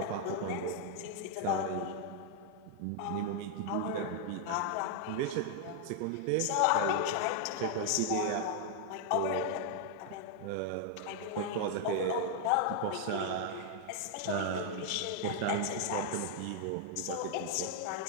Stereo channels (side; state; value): both; different; correlation 0.00